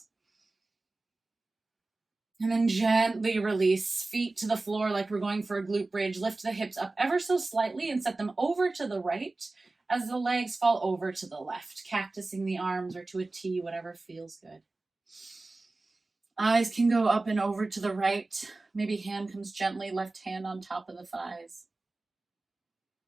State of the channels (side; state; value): left; quieter; 3.2 dB